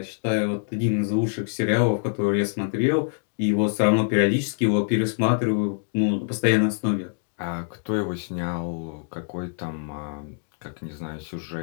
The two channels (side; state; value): right; silent; digital silence